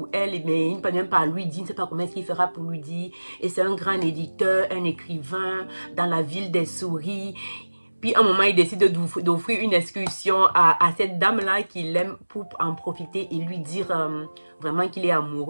elle, mais il ne peut même pas lui dire, il ne sait pas comment est-ce qu'il fera pour lui dire. Et c'est un grand éditeur, un écrivain dans la ville des souris. Puis à un moment, il décide d'offrir une excursion à cette dame-là qu'il aime pour en profiter et lui dire vraiment qu'il est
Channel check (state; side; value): inverted; both; correlation -1.00